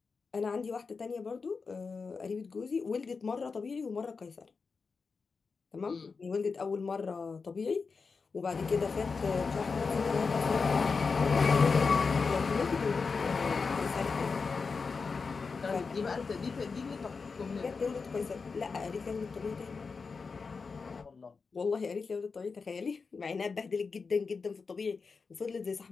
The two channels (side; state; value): right; quieter; 4.8 dB